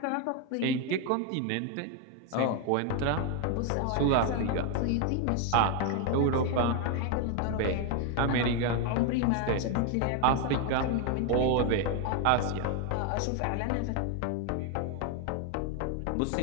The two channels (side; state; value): both; different; correlation 0.01